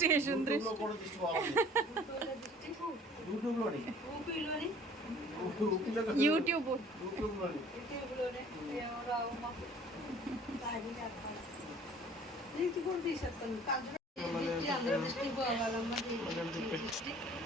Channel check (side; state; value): both; normal; correlation 0.51